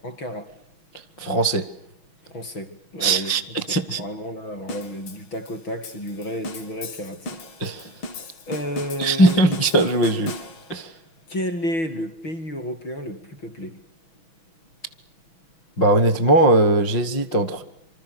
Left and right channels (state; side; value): late; right; 6.1 ms